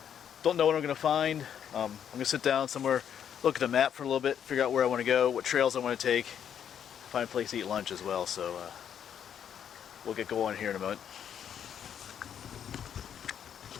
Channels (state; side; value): quieter; right; 8.8 dB